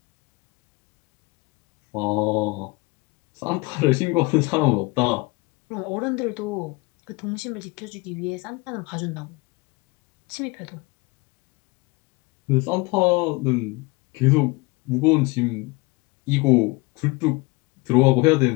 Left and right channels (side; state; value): right; quieter; 25.0 dB